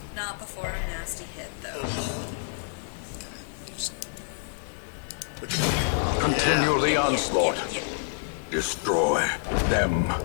Not before a nasty hit, though. Oh. Okay. You just... Wicked. Continue Yeah. the onslaught. Yeah. Destroy them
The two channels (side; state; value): right; silent; digital silence